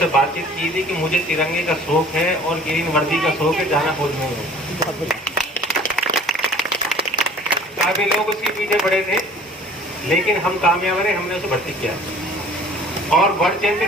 बातचीत की थी कि मुझे तिरंगे का शौक है और ग्रीन वर्दी का शौक है, जाना खोजने में। काफी लोग उसके पीछे पड़े थे, लेकिन हम कामयाब रहे, हमने उसे भर्ती किया। और वर्ल्ड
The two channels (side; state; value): both; normal; correlation 0.49